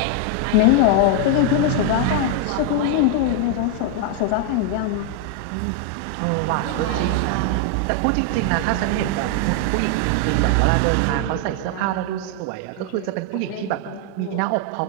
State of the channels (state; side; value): different; both; correlation 0.00